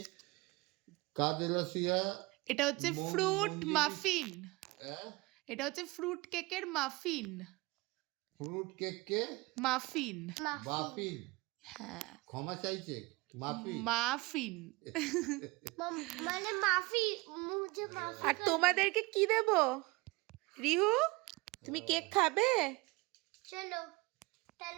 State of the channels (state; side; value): quieter; left; 23.4 dB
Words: कादेलासिया এটা হচ্ছে ফ্রুট মাফিন। हैं? এটা হচ্ছে ফ্রুট কেকের মাফিন। फ्रूट केक के মাফিন। माफिन হ্যাঁ क्षमा चाहिए माफी মাফিন। মানে মাফি মুঝে মাফি। আর তোমাদেরকে কি দেব? রিহু তুমি কেক খাবে? চলো